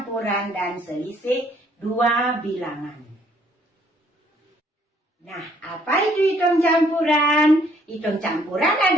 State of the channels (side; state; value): both; normal; correlation 0.64